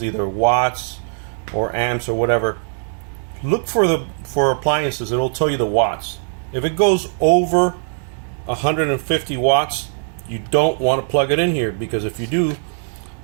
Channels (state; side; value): silent; left; digital silence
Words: either watts or amps or whatever. Look for appliances, it'll tell you the watts. If it goes over 150 watts, you don't want to plug it in here, because if you do,